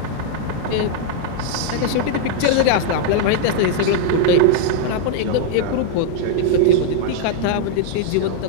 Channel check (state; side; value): different; both; correlation 0.00